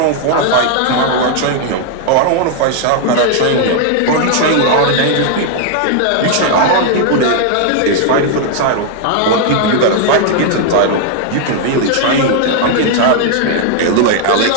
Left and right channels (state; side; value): different; both; correlation 0.00